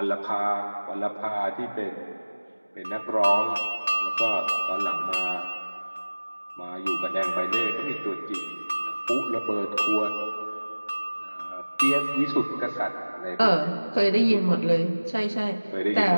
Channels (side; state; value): both; inverted; correlation -1.00